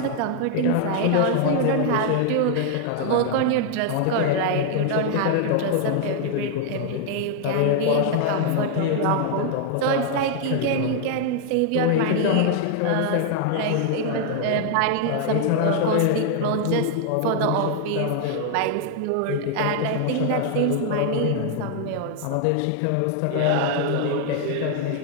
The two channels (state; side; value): different; both; correlation 0.00